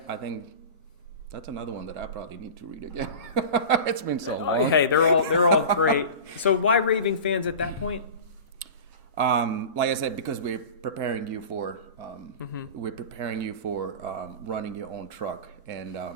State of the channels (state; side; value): inverted; both; correlation -0.33